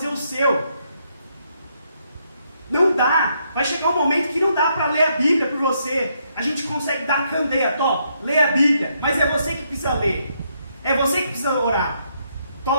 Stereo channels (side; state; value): both; inverted; correlation -0.75